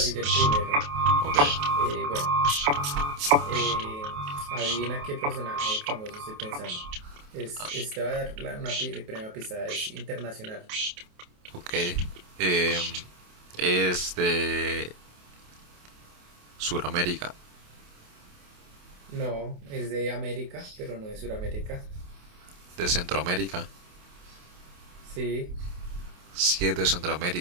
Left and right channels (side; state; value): left; late; 28 ms